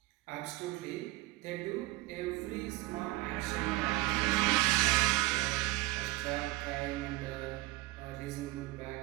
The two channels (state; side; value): quieter; left; 19.5 dB